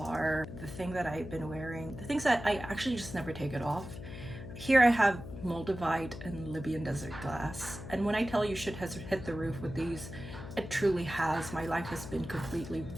the thing that I've been wearing, the things that I actually just never take it off. Here I have Moldavite and Libyan desert glass. And when I tell you shit has hit the roof with these, it truly has. My life has been completely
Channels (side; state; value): left; noise; hum, 11 dB below the sound